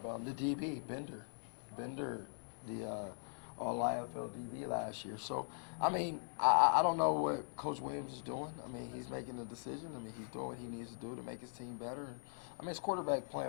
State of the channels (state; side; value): silent; right; digital silence